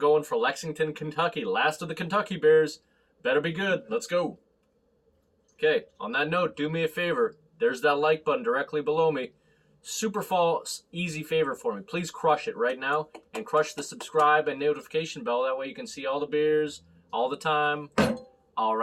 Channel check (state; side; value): identical; both; correlation 1.00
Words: for Lexington, Kentucky. Last of the Kentucky Bears. Better be good. Let's go. Okay, on that note, do me a favor. There's that like button directly below me. Super easy favor for me. Please crush it right now and crush the subscribe and notification bell. That way you can see all the beers all the time. All